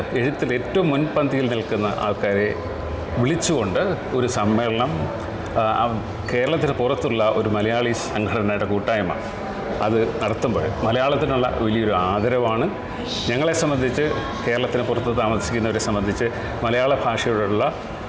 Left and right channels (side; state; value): both; identical; correlation 1.00